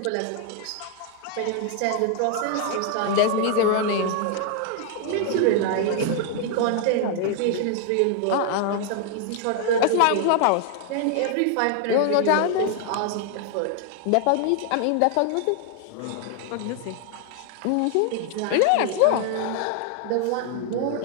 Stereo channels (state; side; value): different; both; correlation 0.00